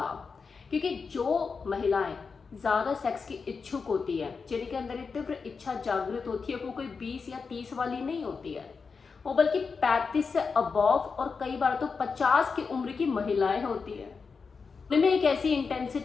क्योंकि जो महिलाएं ज़्यादा सेक्स की इच्छुक होती है, जिनके अंदर एक तीव्र इच्छा जागृत होती है, वो कोई 20 या 30 वाली नहीं होती है, वो बल्कि 35 से अबव और कई बार तो 50 की उम्र की महिलाएं होती है। उनमें एक ऐसी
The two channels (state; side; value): quieter; right; 5.1 dB